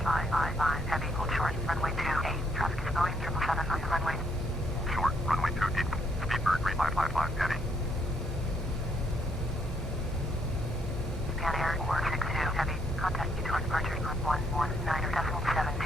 555 heavy, hold short, runway 28, traffic is going 777 on the runway. Short, runway 28, Speedbird 3555 heavy. Pan Air 462 heavy, contact you towards departure on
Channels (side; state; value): both; normal; correlation 0.71